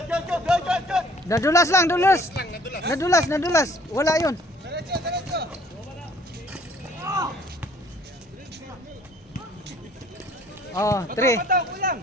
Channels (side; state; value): both; normal; correlation 0.57